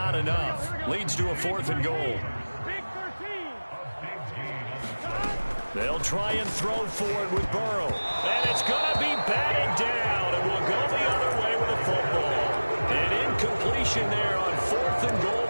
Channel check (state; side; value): inverted; both; correlation -1.00